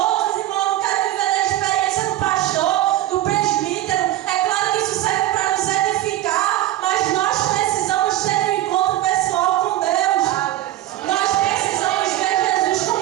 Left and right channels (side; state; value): left; quieter; 14.6 dB